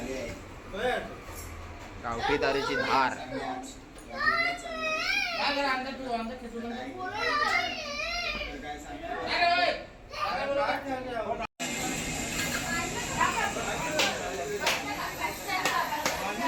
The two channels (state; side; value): identical; both; correlation 1.00